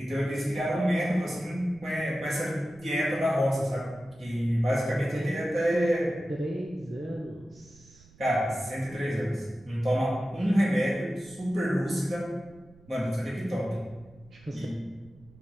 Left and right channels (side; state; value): right; noise; rumble, 25 dB below the sound